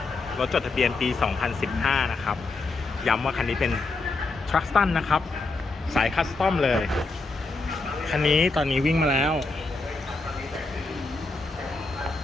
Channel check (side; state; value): right; quieter; 3.6 dB